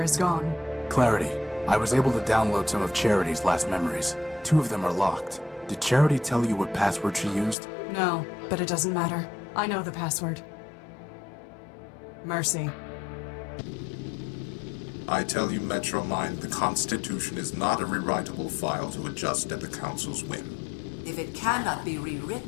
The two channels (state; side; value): drops out; right; at 7.6 s